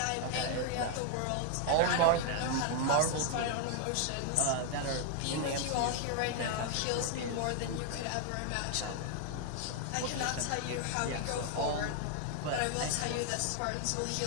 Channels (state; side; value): different; both; correlation 0.00